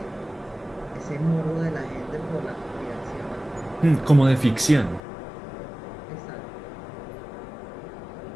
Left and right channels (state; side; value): drops out; right; at 5.0 s